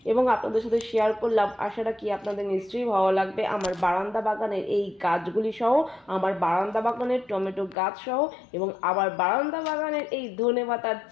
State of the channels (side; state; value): right; drops out; at 7.8 s